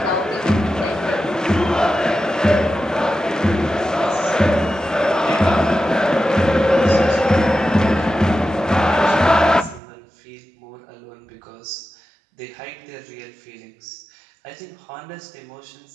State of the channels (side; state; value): left; drops out; at 9.8 s